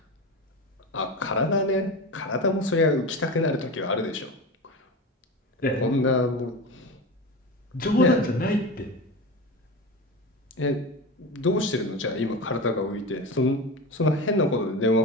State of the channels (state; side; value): normal; both; correlation 0.26